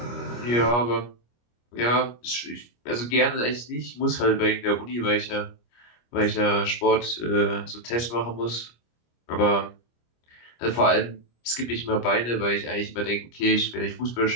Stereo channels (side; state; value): right; late; 25 ms